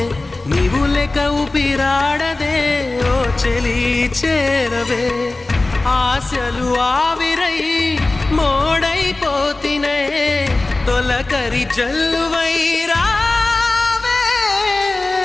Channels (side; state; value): right; quieter; 3.1 dB